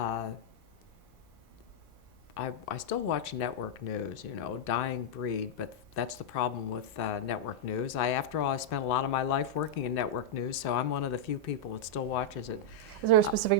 I still watch network news, dying breed, but that's the problem with network news. After all, I spent a lot of my life working in network news, so I'm one of the few people that still watches it. Is there a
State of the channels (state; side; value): normal; both; correlation -0.05